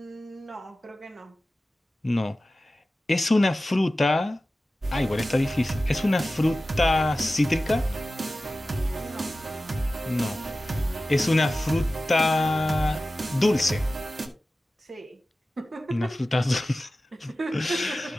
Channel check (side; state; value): both; normal; correlation 0.95